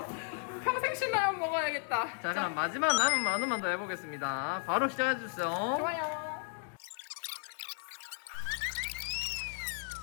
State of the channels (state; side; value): silent; right; 55 dB below the other